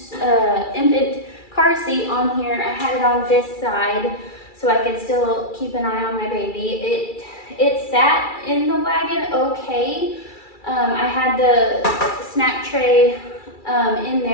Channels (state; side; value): late; right; 2.3 ms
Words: car seat on here. I had it on this side so I could still keep an eye on my baby. It sat in the wagon okay. I had the snack tray in